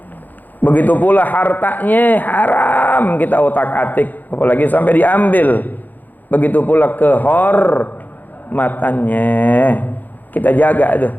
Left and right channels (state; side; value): late; right; 0.085 ms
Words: Begitu pula hartanya haram kita otak-atik, apalagi sampai diambil. Begitu pula kehormatannya kita jaga itu.